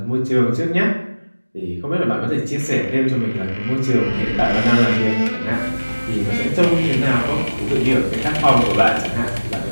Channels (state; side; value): inverted; both; correlation -1.00